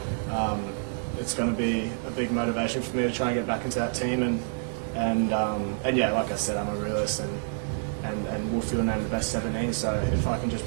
it's going to be a big motivation for me to try and get back into that team. And yeah, like I said, I'm a realist, and Wolfie will name the best 17. So, if I can just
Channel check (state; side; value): silent; left; 59 dB below the other